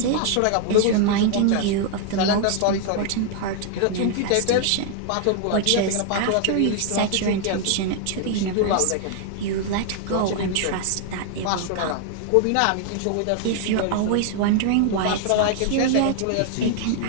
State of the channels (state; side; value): different; both; correlation 0.00